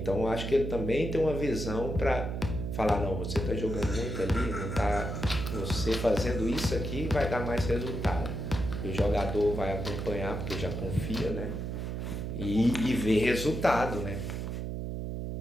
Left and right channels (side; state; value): right; noise; hum, 4 dB below the sound